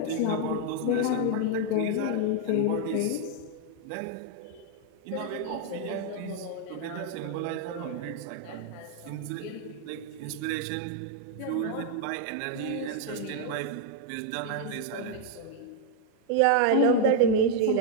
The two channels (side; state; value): both; different; correlation 0.00